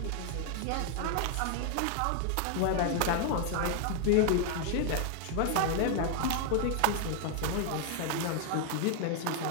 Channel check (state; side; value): different; both; correlation 0.00